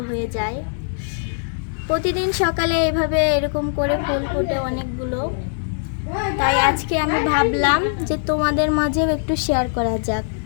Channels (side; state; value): right; silent; digital silence